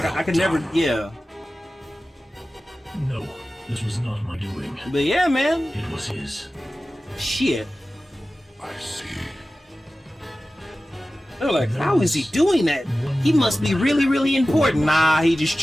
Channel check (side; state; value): both; normal; correlation 0.96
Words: I could never, yeah. No, this was not my doing. But yeah, man. It was his. Shit. I see. They're like, how is he doing that? He must be really important. Nah, he just